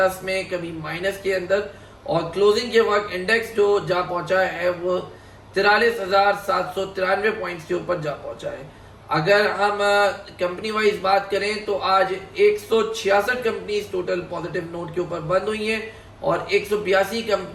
में, कभी माइनस के अंदर, और क्लोजिंग के वक्त इंडेक्स जो जा पहुंचा है वो 43,793 पॉइंट्स के ऊपर जा पहुंचा है। अगर हम कंपनी वाइज बात करें तो आज 166 कंपनीज टोटल पॉजिटिव नोट के ऊपर बंद हुई हैं और 182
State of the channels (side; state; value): both; identical; correlation 1.00